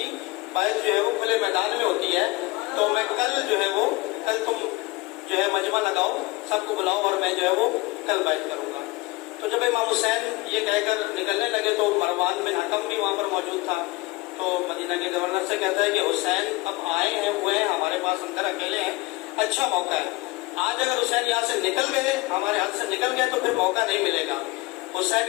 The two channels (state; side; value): quieter; right; 22.4 dB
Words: بیعت جو ہے وہ کھلے میدان میں ہوتی ہے۔ تو میں کل تم جو ہے مجمع لگاؤ، سب کو بلاؤ اور میں جو ہے وہ کل بیعت کروں گا۔ تو جب امام حسین یہ کہہ کر نکلنے لگے تو مروان بن حکم بھی وہاں پر موجود تھا۔ تو مدینہ کے گورنر سے کہتا ہے کہ حسین اب آئے ہیں، ہوئے ہیں ہمارے پاس، اندر اکیلے ہیں، اچھا موقع ہے، آج اگر حسین یہاں سے نکل گئے، ہمارے ہاتھ سے نکل گئے تو پھر موقع نہیں ملے گا،